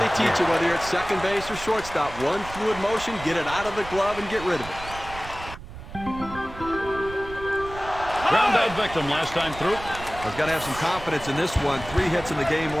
teach you, whether you're at second base or shortstop. One fluid motion, get it out of the glove and get rid of it. Ground out victim last time through. He's got to have some confidence in this one. 3 hits in the game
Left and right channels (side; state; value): right; noise; rumble, 13 dB below the sound